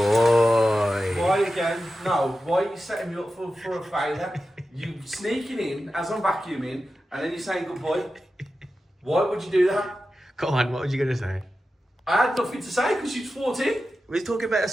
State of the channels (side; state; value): both; normal; correlation 0.92